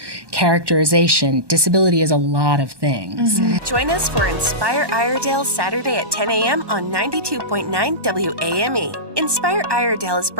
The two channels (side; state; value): left; late; 1.2 ms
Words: characterization. Disability is a lot of things. Join us for Inspire Iredell Saturday at 10 a.m. on 92.9 WAME. Inspire Iredell is